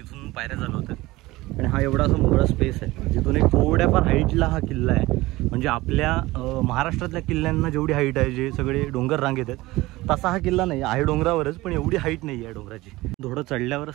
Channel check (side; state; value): left; quieter; 19.3 dB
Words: पायऱ्या चालू होत्या आणि हा एवढा असा मोकळा स्पेस आहे. जिथून एक थोड्याफार हाईटला हा किल्ला आहे. म्हणजे आपल्या महाराष्ट्रातल्या किल्ल्यांना जेवढी हाईट आहे, जे सगळे डोंगर रांगेत आहेत, तसा हा किल्ला नाही आहे. डोंगरावरच, पण एवढी हाईट नाही आहे डोंगराची. थोडं चढल्यावर